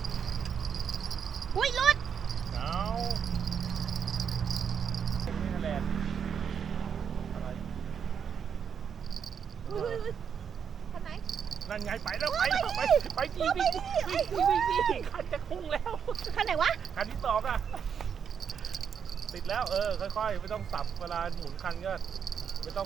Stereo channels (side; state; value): left; quieter; 7.4 dB